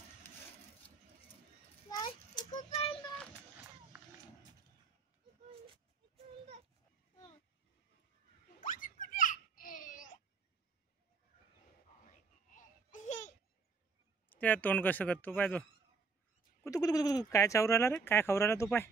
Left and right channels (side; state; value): left; quieter; 4.7 dB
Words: त्या तोंड कसं करतो पाय तो, कुतू कुतू कुतू काय चावू राहिला रे, काय खाऊ राहिला तो पाय,